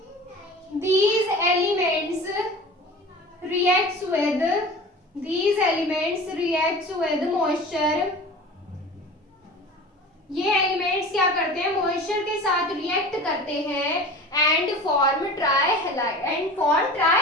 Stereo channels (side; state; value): both; normal; correlation 0.37